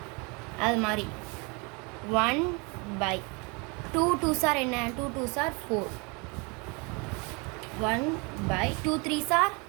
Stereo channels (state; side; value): quieter; left; 30.1 dB